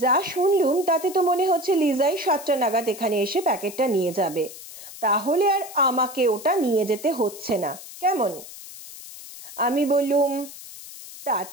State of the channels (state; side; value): noise; left; hiss, 15 dB below the sound